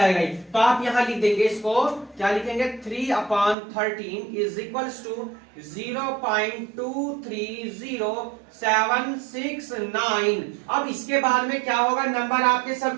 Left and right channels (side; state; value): left; drops out; at 3.6 s